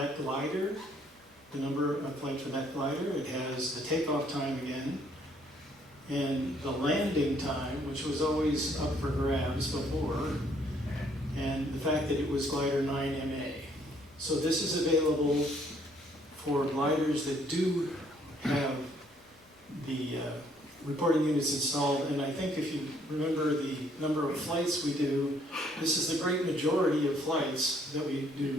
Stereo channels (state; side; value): normal; both; correlation 0.66